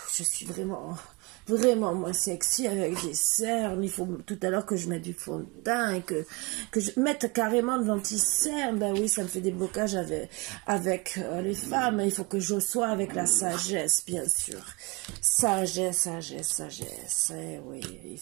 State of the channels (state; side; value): quieter; left; 26.9 dB